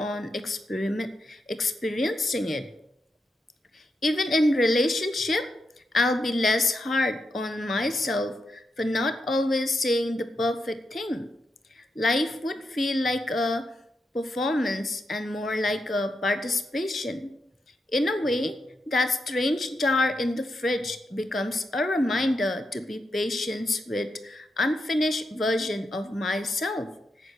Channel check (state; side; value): normal; both; correlation 0.85